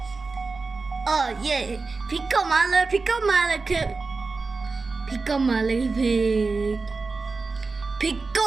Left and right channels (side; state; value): left; quieter; 4.0 dB